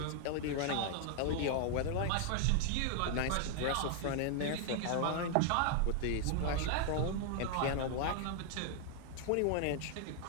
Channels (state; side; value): different; both; correlation 0.00